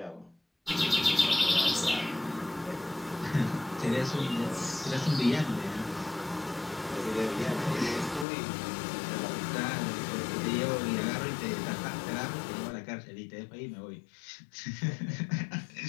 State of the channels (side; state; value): right; drops out; at 8.2 s